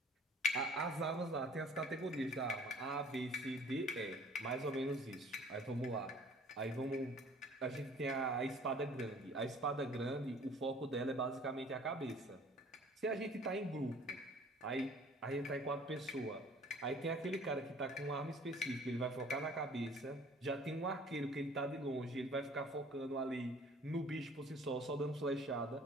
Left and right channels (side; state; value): both; normal; correlation 0.51